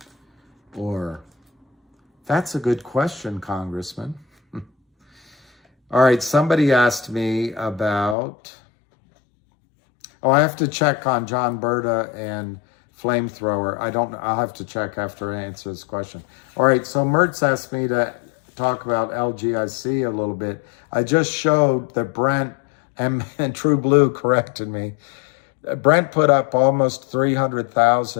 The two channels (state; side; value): drops out; right; at 8.2 s